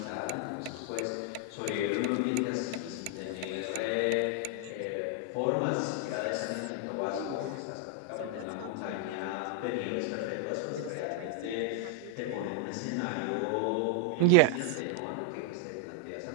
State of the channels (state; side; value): different; both; correlation -0.01